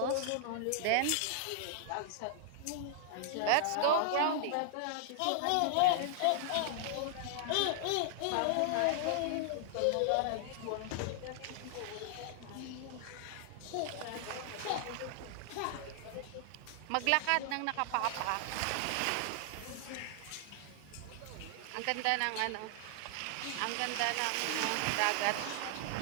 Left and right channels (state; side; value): different; both; correlation 0.00